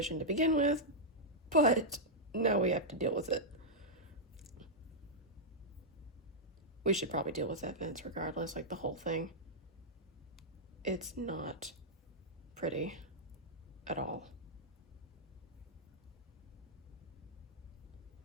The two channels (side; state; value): both; normal; correlation -0.07